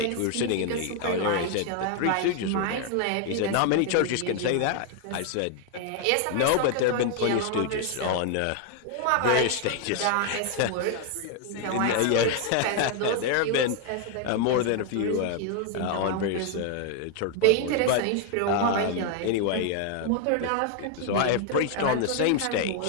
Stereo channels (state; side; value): different; both; correlation 0.00